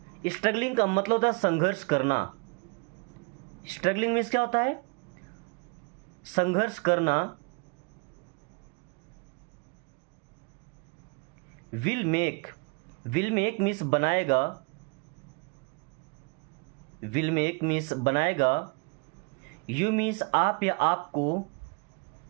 स्ट्रगलिंग का मतलब होता है संघर्ष करना। स्ट्रगलिंग मीन्स क्या होता है? संघर्ष करना। Will make, will make means बनाएगा, विल मेक मीन्स बनाएगा, यू मीन्स आप या आपको,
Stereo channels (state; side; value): quieter; left; 33.2 dB